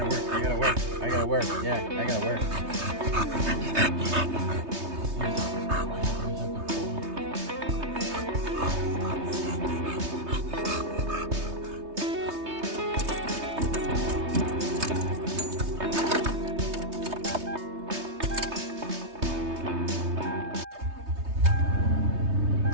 work. I gotta work. I gotta work. Yeah, I gotta work.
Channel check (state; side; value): late; left; 3.2 ms